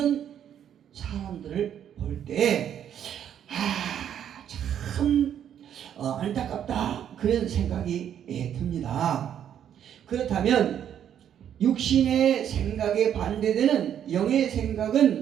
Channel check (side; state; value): left; quieter; 9.6 dB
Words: 사람들을 볼 때 참 안타깝다 그런 생각이 듭니다. 그렇다면 육신의 생각에 반대되는 영의